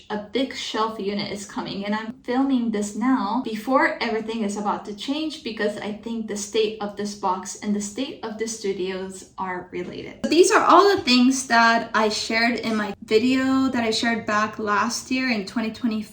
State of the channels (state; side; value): identical; both; correlation 1.00